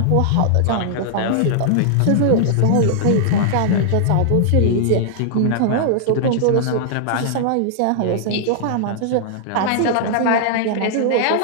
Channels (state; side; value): different; both; correlation -0.01